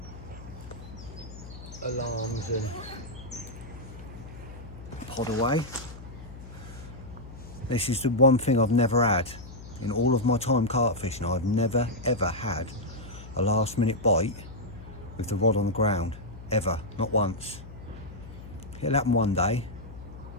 alarms and pod away. This is the one thing I've never had in all of my time carp fishing. I've never ever had a last minute bite with the rod on the ground. Ever. Not once. It'll happen one day.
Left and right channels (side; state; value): left; noise; hum, 14 dB below the sound